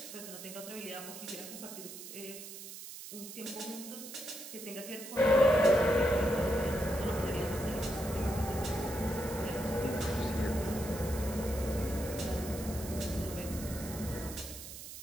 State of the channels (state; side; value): noise; right; hiss, 11 dB below the sound